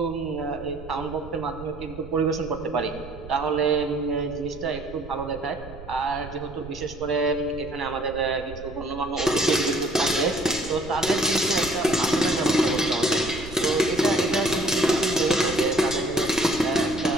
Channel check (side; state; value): right; noise; rumble, 15 dB below the sound